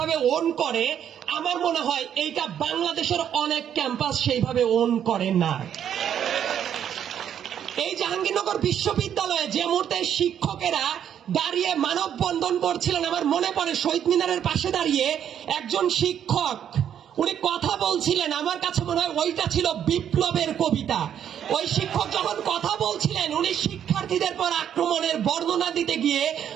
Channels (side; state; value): left; quieter; 9.4 dB